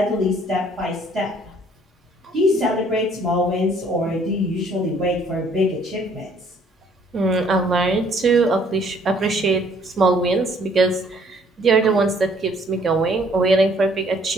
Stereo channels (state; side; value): normal; both; correlation 0.61